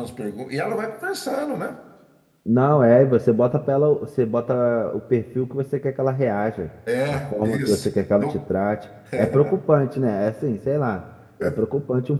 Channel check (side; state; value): both; identical; correlation 1.00